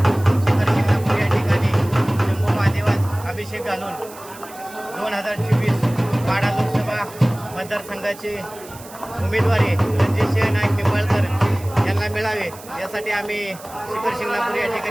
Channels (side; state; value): right; noise; hiss, 19 dB below the sound